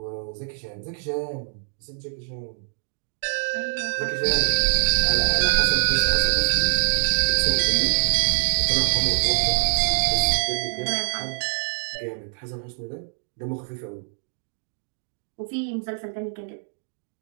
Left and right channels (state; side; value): silent; left; digital silence